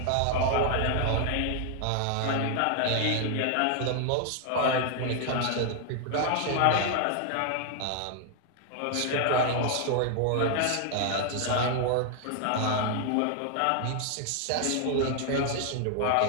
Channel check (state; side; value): different; both; correlation 0.00